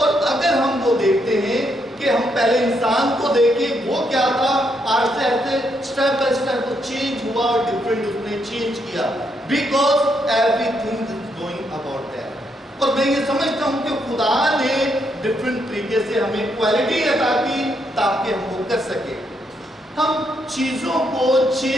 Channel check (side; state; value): both; normal; correlation 0.77